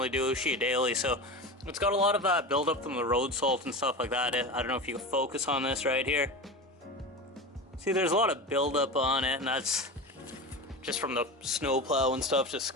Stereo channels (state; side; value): normal; both; correlation 0.26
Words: do, sheet daily, so it's got a lot of buildup from the road salt and stuff like that. I don't know if you can focus on this right here. See, there's a lot of buildup on it, and that's just from the snow plow and stuff, just